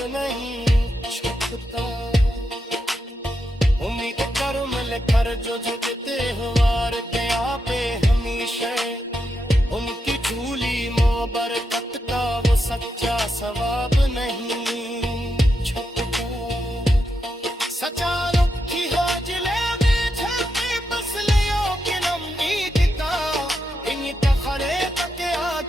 नहीं छुपता। उम्मीद कर मिल कर जो झुकते हुआर के आपे हमेशा, उनकी झूली मोबरकत का वो सच्चा सवाब नहीं छुपता। सच्चा रुखी हो जिले में छपे बसलियों की नमनीद का, इन तखरे के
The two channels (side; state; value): both; normal; correlation 0.84